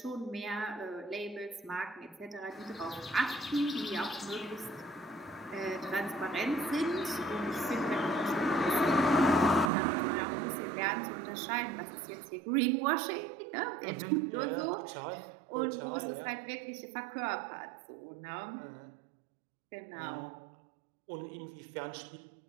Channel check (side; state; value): left; drops out; at 9.7 s